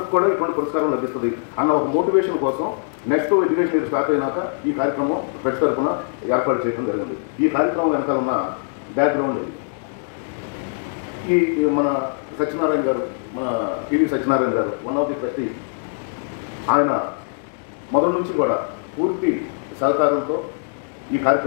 కూడా ఇటువంటి పురస్కారం లభిస్తుంది అన్న ఒక మోటివేషన్ కోసం నెక్స్ట్ ఎడ్యుకేషన్ ఇయర్ స్టార్ట్ అయినాక ఈ కార్యక్రమం ప్రతి తరఫున ఏర్పాటు చేయడం జరిగింది. ఈ కార్యక్రమం వెనకాల ఉన్న బ్యాక్గ్రౌండ్ ఇది. ఈ మన సత్యనారాయణ గారు, మన టీవీ సత్యనారాయణ గారు, వన్ ఆఫ్ ది ట్రస్టీ, ఆయన మొదటి నుంచి కూడా పూర్తి సహకారంతో ఈ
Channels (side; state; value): right; silent; 63 dB below the other